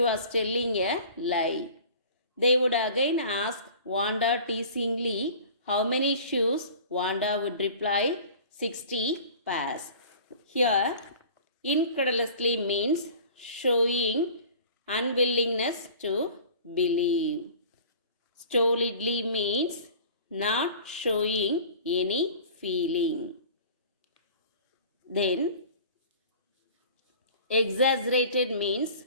was telling a lie. They would again ask Wanda teasingly how many shoes. Wanda would reply 60 pairs. Here, incredulously means showing unwillingness to believe. Stolidly means not showing any feeling. Then, exaggerated means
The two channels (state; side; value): inverted; both; correlation -0.43